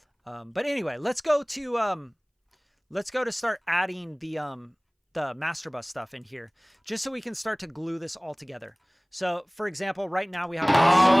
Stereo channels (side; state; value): both; identical; correlation 1.00